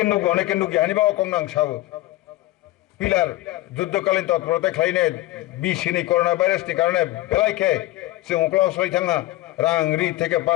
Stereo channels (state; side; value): quieter; right; 17.2 dB